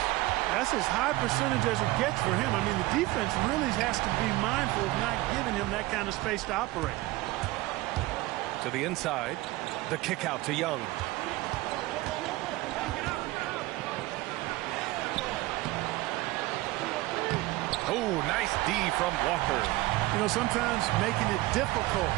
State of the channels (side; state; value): left; quieter; 19.2 dB